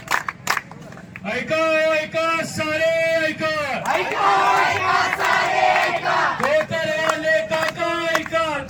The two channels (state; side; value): identical; both; correlation 1.00